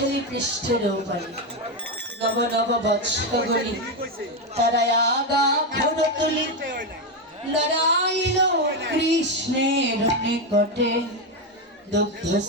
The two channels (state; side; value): normal; both; correlation 0.09